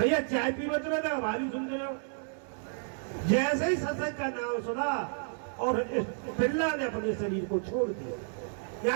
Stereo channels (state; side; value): silent; left; 57 dB below the other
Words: चाय पी मत रहे ना, हमारी सुन रहे हो। जैसे ही सत्संग का नाम सुना और इस पिल्ला ने अपने शरीर को छोड़ दिया,